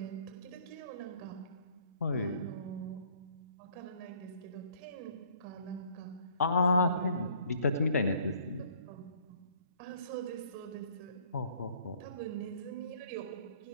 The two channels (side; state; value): both; inverted; correlation -0.58